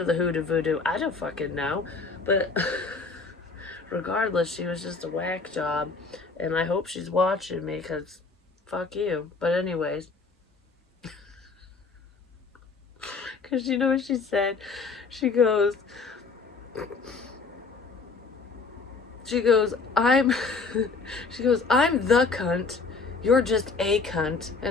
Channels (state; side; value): quieter; right; 4.3 dB